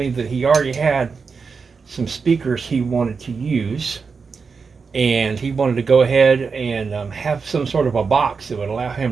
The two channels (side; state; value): left; quieter; 5.2 dB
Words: that he already had some speakers he wanted to use, and he wanted to go ahead and have some sort of a box that would allow